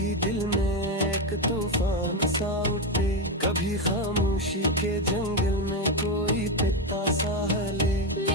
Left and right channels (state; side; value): normal; both; correlation 0.10